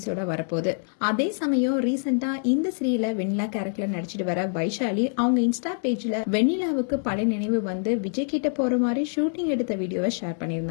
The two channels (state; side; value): silent; right; 61 dB below the other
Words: வரப்போகுது. அதே சமயம் ரீசெண்டா இந்த சீரியல்ல வெண்ணிலா கேரக்டர்ல நடிச்சிட்டு வர வைஷாலி அவங்க இன்ஸ்டா பேஜ்ல வெண்ணிலாவுக்கு பழைய நினைவு விஜய் கிட்ட போற மாதிரி ஷூட்டிங் எடுத்த வீடியோவை ஷேர்